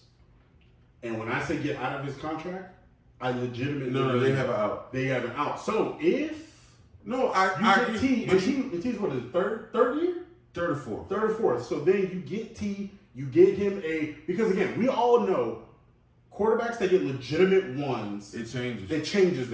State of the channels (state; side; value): identical; both; correlation 1.00